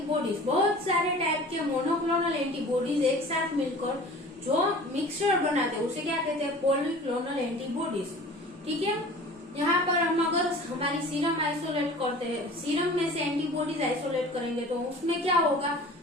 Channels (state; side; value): normal; both; correlation 0.42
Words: बहुत सारे टाइप के मोनोक्लोनल एंटीबॉडीज एक साथ मिलकर जो मिक्सचर बनाते हैं उसे क्या कहते हैं, पॉलीक्लोनल एंटीबॉडीज। ठीक है। यहाँ पर हम अगर हमारी सीरम आइसोलेट करते हैं, सीरम में से एंटीबॉडीज आइसोलेट करेंगे तो उसमें क्या होगा,